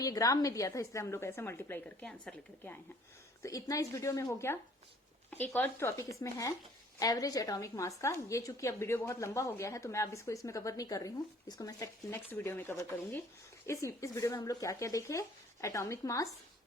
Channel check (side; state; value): both; normal; correlation 0.56